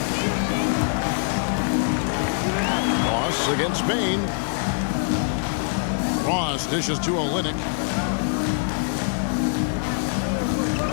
Ross against Bain. Ross dishes to Olynyk.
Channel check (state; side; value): silent; right; digital silence